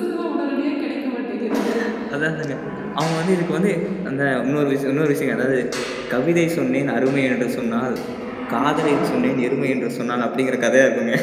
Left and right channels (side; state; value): both; identical; correlation 1.00